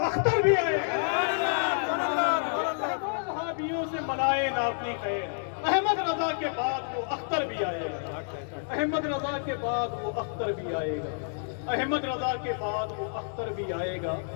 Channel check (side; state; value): right; silent; digital silence